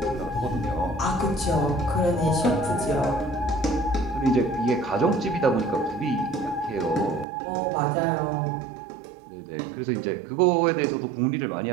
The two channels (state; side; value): drops out; left; at 7.2 s